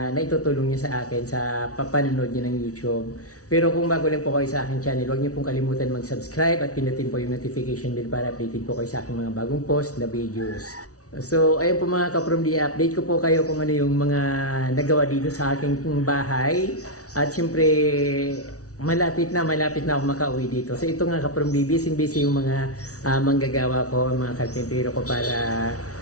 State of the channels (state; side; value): late; right; 0.66 ms